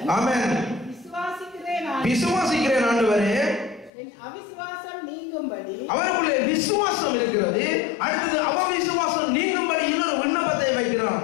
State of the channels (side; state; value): right; drops out; at 3.9 s